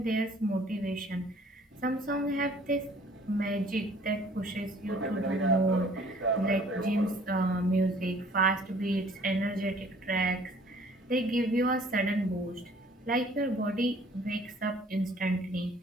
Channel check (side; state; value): both; normal; correlation 0.55